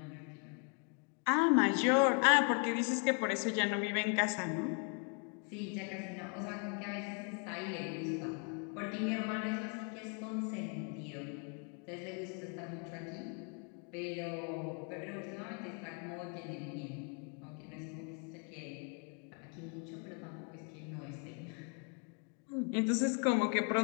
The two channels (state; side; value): quieter; right; 39.2 dB